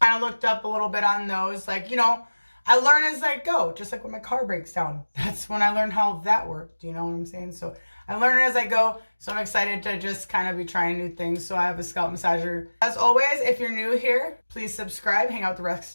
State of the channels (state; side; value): inverted; both; correlation -1.00